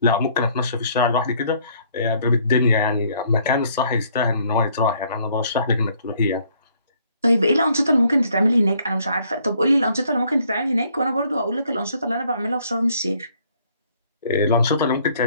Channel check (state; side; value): inverted; both; correlation -0.64